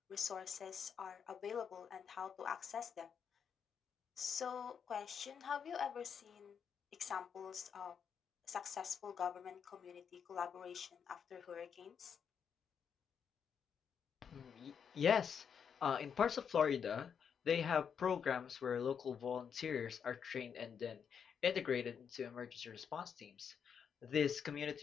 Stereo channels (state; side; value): quieter; right; 7.2 dB